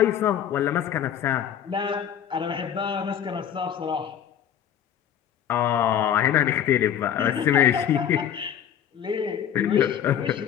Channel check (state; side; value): quieter; right; 9.5 dB